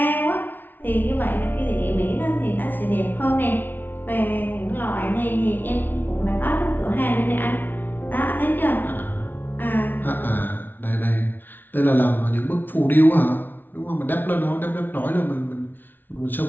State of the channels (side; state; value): right; late; 0.092 ms